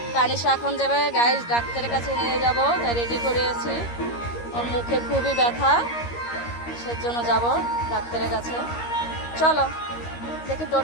তানিশা এখন যাবে গাইস ডাক্তারের কাছে নিয়ে যাব, তাই রেডি করে আছি। ওর মুখে খুবই ব্যথা, সেজন্য যাব ডাক্তারের কাছে। চলো দেখি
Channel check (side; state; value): right; late; 13 ms